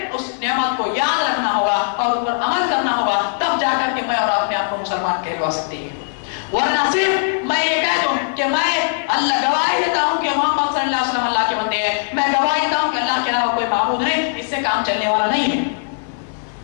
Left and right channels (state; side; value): silent; right; 61 dB below the other